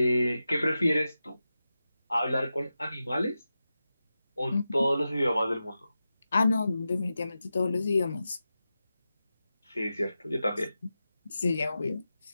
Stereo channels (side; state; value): both; inverted; correlation -0.92